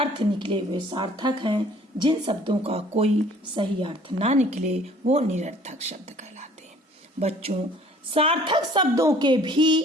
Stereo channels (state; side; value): normal; both; correlation 0.54